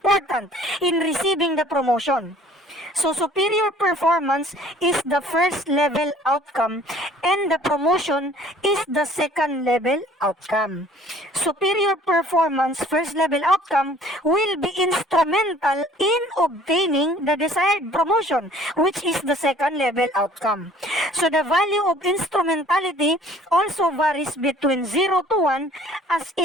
in receiving the promotion. So superior performance is the first level outcome and the promotion is the second level outcome. Superior performance, first level outcome, will be instrumental in obtaining the desired promotion, which is the second level outcome. So the value of instrumentality also varies between 0 to 1 as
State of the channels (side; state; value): both; normal; correlation 0.53